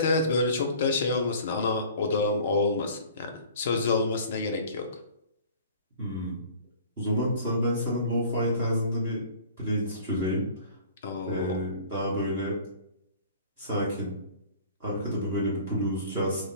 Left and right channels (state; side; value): inverted; both; correlation -0.47